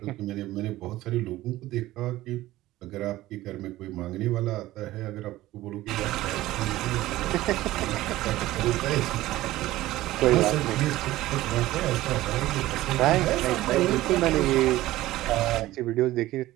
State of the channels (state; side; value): quieter; left; 16.4 dB